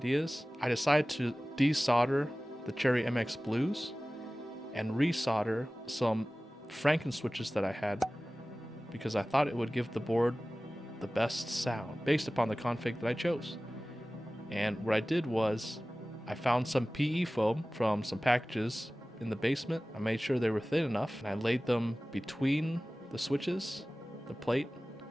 I decided to desolder the Cherry MX Blues and resolder some Franken switches that I had because I thought it would give the board the best sound based upon the config that I chose. And what I did was I found some PE foam from some packages in the basement. I made sure they were thin enough and I laid them between the switches, the plate,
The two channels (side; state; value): both; normal; correlation 0.97